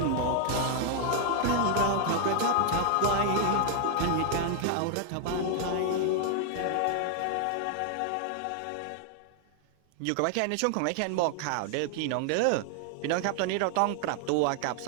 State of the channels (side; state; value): both; different; correlation 0.00